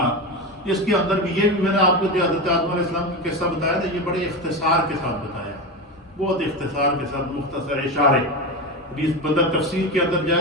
اس کے اندر بھی یہ بھی میں نے آپ کو جو حضرت آدم علیہ السلام کا قصہ بتایا تھا، یہ بڑے اختصار کے ساتھ بتایا، بہت اختصار کے ساتھ، مختصر اشارے۔ بندہ تفسیر کے اندر جائے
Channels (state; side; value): normal; both; correlation 0.19